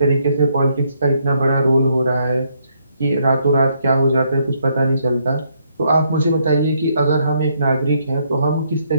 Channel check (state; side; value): inverted; both; correlation -0.73